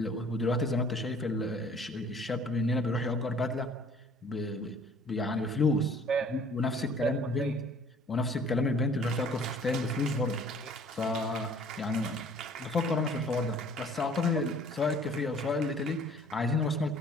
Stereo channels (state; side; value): normal; both; correlation 0.53